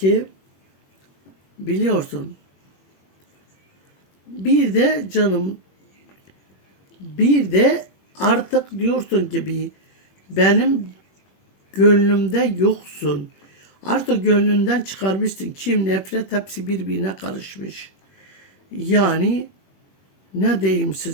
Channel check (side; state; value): right; late; 21 ms